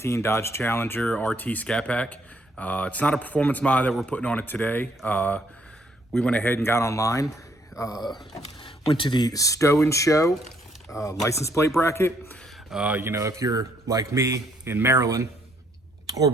Dodge Challenger RT Scat Pack. It's not a performance mod that we're putting on it today. We went ahead and got online, went to the Stow & Show license plate bracket. You know, if you're like me in Maryland or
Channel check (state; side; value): normal; both; correlation 0.68